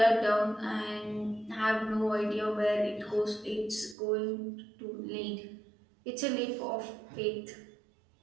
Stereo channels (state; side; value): drops out; left; at 4.0 s